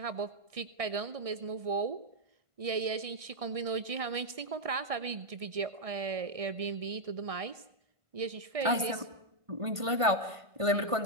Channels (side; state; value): left; late; 1.5 ms